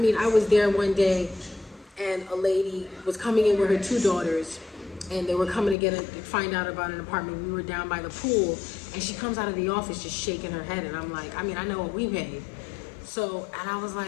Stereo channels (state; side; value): drops out; right; at 5.8 s